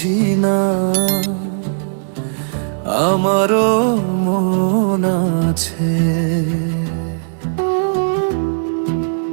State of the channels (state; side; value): silent; left; digital silence